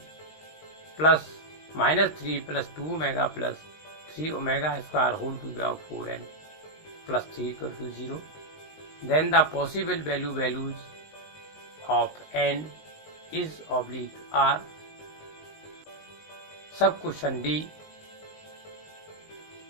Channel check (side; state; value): right; late; 19 ms